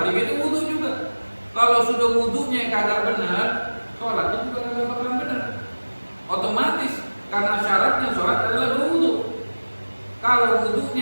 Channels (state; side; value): inverted; both; correlation -1.00